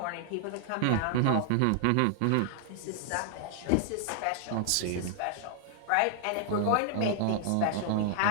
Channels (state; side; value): different; both; correlation 0.00